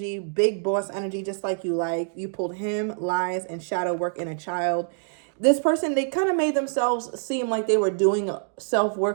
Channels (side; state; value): left; silent; digital silence